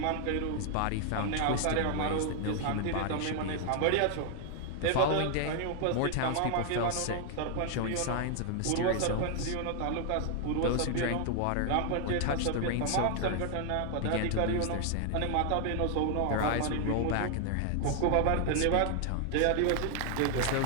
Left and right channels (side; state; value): both; different; correlation 0.00